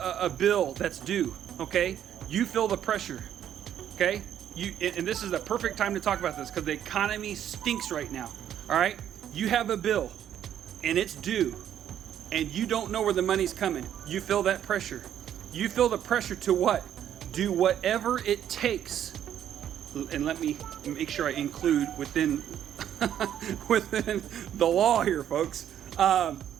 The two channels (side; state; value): left; quieter; 10.2 dB